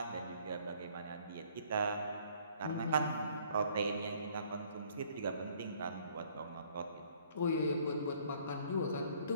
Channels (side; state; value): both; inverted; correlation -0.60